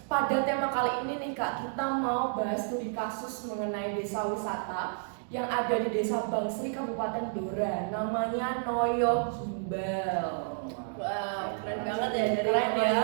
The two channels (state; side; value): silent; left; digital silence